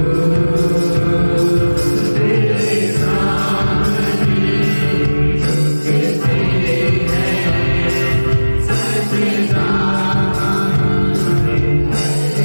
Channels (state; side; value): inverted; both; correlation -1.00